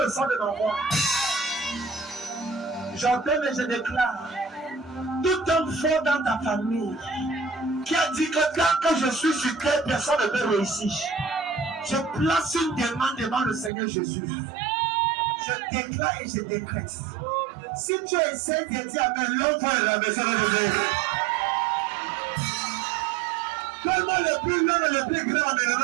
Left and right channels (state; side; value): drops out; left; at 13.7 s